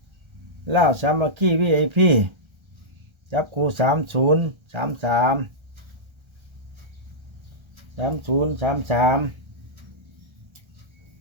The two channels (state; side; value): late; left; 1.3 ms